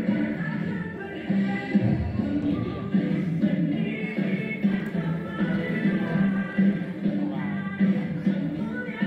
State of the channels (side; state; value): both; identical; correlation 1.00